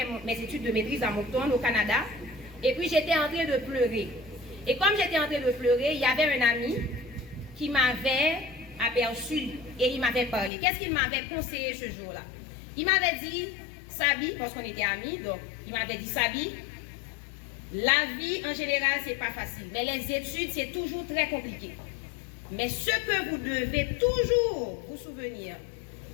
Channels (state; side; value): drops out; right; at 10.5 s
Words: mes études de maîtrise à Moncton au Canada. Et puis j'étais en train de pleurer. Et comme j'étais en train de pleurer, il y avait un ami qui m'avait aperçu et il m'avait parlé. Qu'est-ce qu'il m'avait conseillé ce jour-là? Il m'avait dit, Sabi, parce qu'on était amis, donc il m'avait dit, Sabi, la vie en général c'est pas facile, mais les études c'est toujours très compliqué. Mais ce que vous devez toujours vous souvenir,